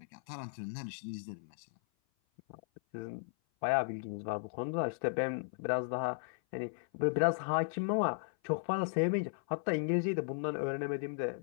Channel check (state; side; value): silent; right; 54 dB below the other